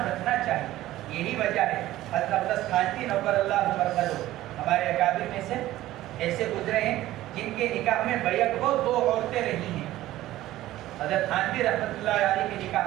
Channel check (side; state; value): left; quieter; 15.3 dB